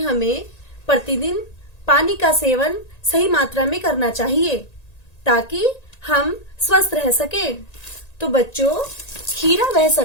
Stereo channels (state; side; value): late; right; 1.9 ms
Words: प्रतिदिन पानी का सेवन सही मात्रा में करना चाहिए ताकि हम स्वस्थ रह सके। तो बच्चों, खीरा वह